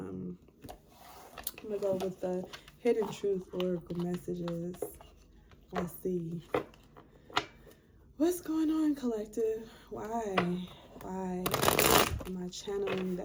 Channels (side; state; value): both; identical; correlation 1.00